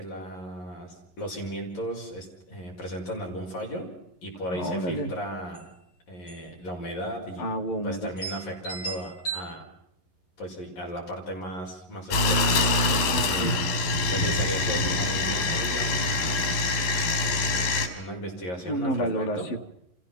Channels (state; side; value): late; right; 11 ms